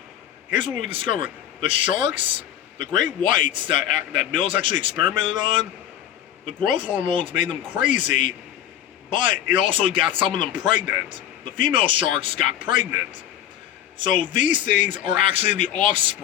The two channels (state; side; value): quieter; right; 11.1 dB